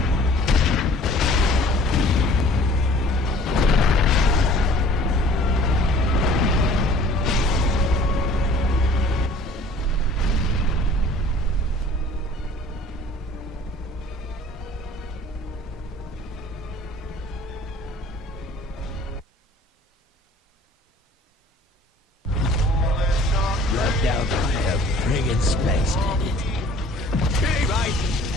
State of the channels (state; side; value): normal; both; correlation 0.51